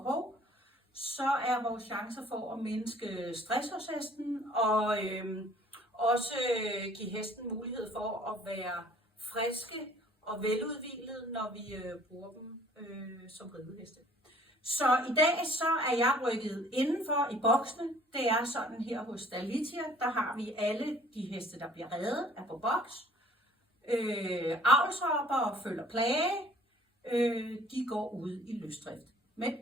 så er vores chancer for at mindske stress hos hesten og også give hesten mulighed for at være friske og veludhvilede, når vi bruger dem som rideheste. Så i dag så er jeg rykket indenfor i boksene. Det er sådan her hos Dalitia, der har vi alle de heste, der bliver reddet, er på boks. Avlshopper og følger plage, de går ud i løsdrift. Men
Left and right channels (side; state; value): both; normal; correlation 0.54